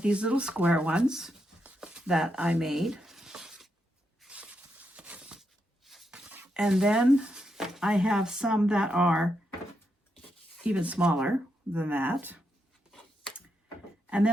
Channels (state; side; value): normal; both; correlation 0.82